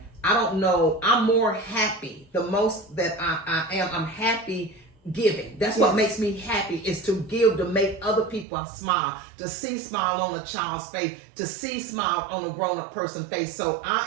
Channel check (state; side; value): drops out; left; at 8.5 s